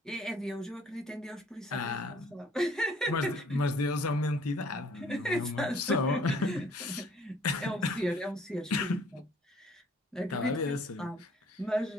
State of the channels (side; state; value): both; normal; correlation 0.58